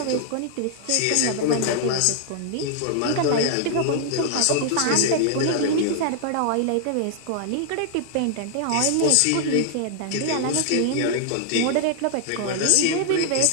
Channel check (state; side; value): different; both; correlation 0.00